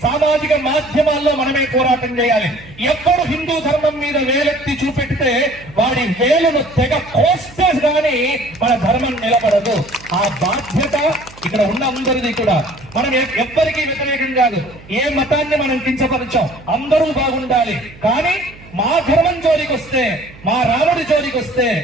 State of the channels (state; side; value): noise; right; hum, 22 dB below the sound